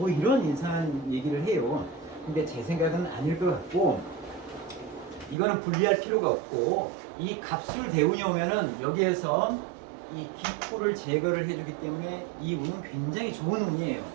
이런 이상한 얘기를 해요. 근데 제 생각은 아닐 것 같고 이거는 분리할 필요가 없고 이 갑술 대운이 오면은 여기에서 이 기토를 제거를 해주기 때문에 이 운은 굉장히 좋은 운이에요.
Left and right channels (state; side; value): drops out; left; at 5.4 s